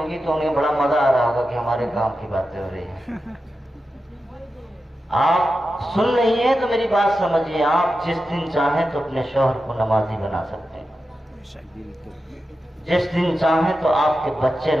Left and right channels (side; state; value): both; normal; correlation 0.91